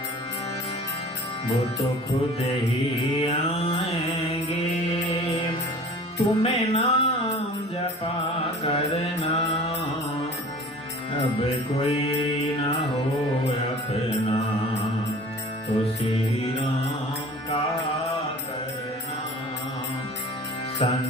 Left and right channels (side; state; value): both; normal; correlation 0.44